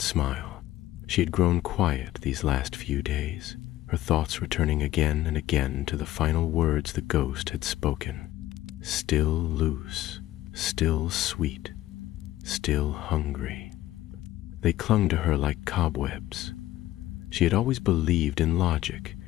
smile. She had grown quiet these last few days, her thoughts returning again and again to the final words the ghost had spoken. Still loose, still sweet, still hungry. They clung to her like cobwebs. She had always believed in logic,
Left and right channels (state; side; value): quieter; right; 14.9 dB